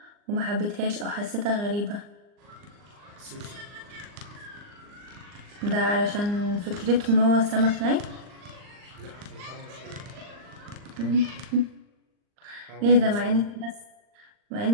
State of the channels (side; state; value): left; late; 39 ms